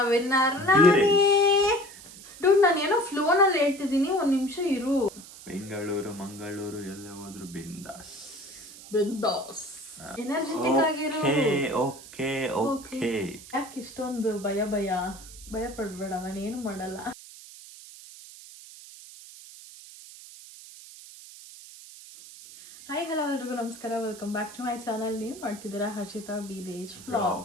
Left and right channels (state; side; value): noise; right; hiss, 17 dB below the sound